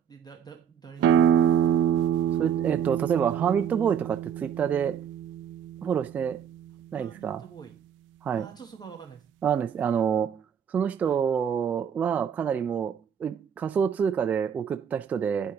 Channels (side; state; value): left; quieter; 8.2 dB